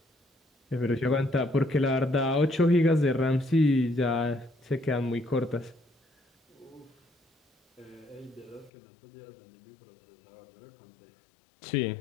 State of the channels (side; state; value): right; drops out; at 8.7 s